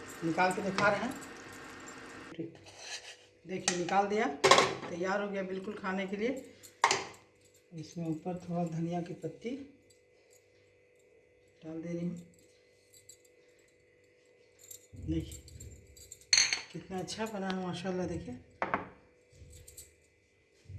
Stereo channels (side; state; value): both; identical; correlation 1.00